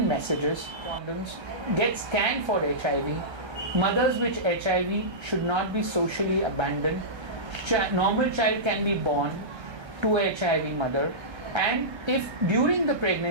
messages. Condoms, get scanned for HIV. Mothers with HIV should not be socially abandoned. Normal child can be born to a HIV mother. And if during the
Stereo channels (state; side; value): late; left; 1.3 ms